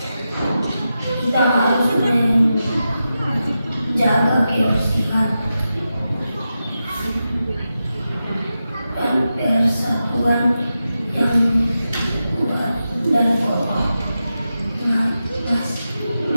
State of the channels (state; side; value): inverted; both; correlation -0.90